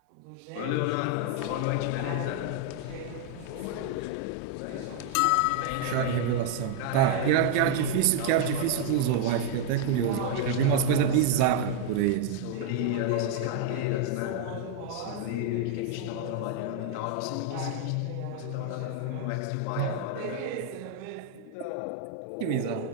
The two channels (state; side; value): different; both; correlation 0.00